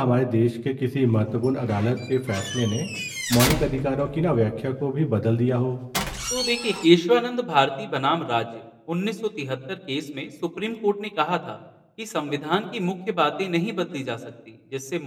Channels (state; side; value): identical; both; correlation 1.00